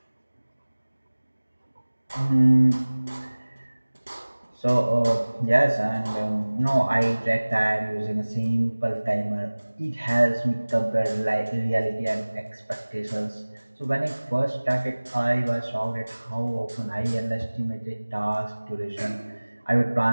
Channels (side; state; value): both; inverted; correlation -1.00